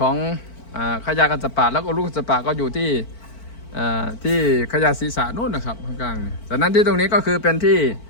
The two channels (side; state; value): right; late; 4.5 ms